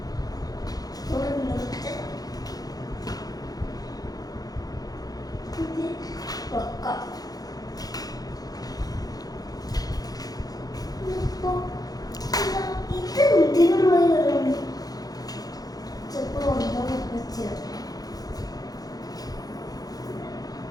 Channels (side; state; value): right; late; 0.18 ms